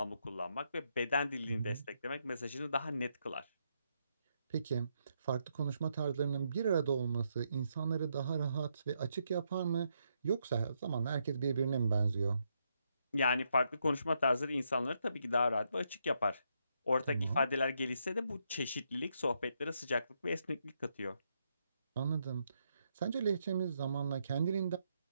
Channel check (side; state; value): both; inverted; correlation -0.78